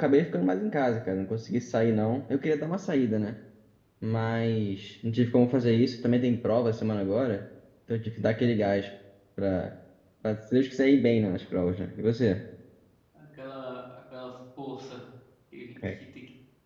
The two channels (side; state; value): both; identical; correlation 1.00